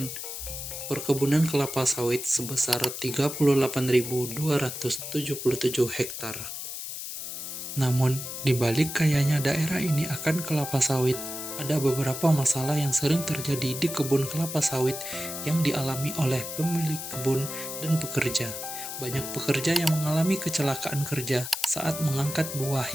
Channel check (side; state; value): left; noise; hiss, 7 dB below the sound